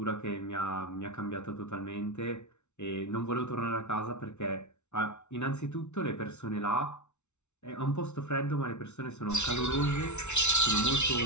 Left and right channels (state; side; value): late; right; 0.82 ms